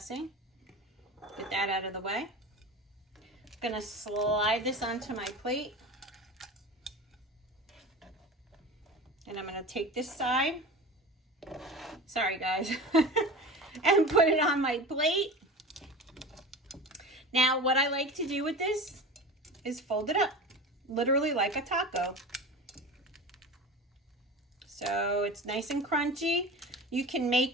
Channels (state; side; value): normal; both; correlation 0.32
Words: Get that out of the way. I'm going to slide this onto my plate. And I'm going to take this side. Sorry, guys. And put it on my plate. Now, what I like to do with this is fold it up. Literally like a taco. So it's nice and crunchy. You can